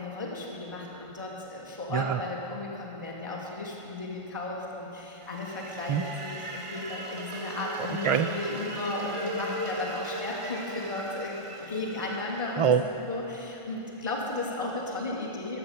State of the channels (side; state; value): left; late; 1.5 ms